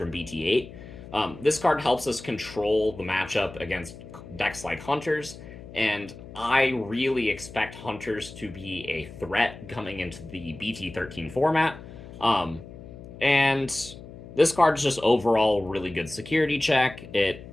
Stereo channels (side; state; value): left; noise; hum, 15 dB below the sound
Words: BT8. This card helps us control the matchup against decks like Hunters, and I really expect Hunters to be a threat coming into the BT13 format. And this card is just overall really good security check. It